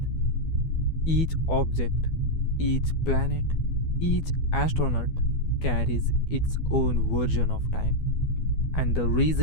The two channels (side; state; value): right; late; 12 ms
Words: Each object, each planet, each astronaut carries its own version of time. And the